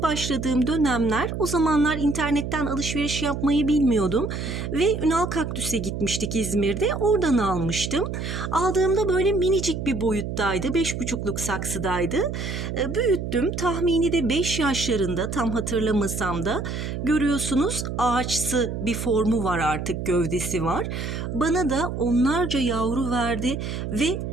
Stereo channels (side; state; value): right; noise; hum, 5 dB below the sound